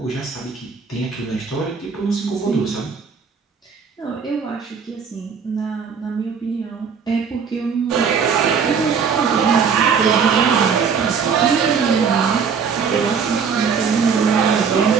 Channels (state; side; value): quieter; left; 6.2 dB